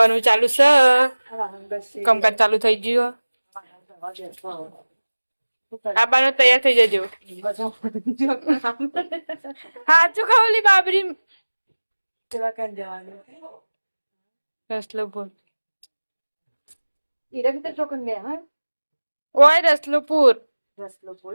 ચાલુ છે કામકાજ ચાલુ થઈ ગયું આબાનો તૈયાર થઈ જજો હાચું ખાવલી બાબરી રસલો બોલ ઓય રસલુપુર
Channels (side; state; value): both; inverted; correlation -1.00